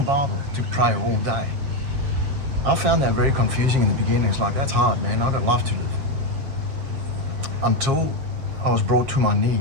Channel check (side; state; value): left; late; 7.4 ms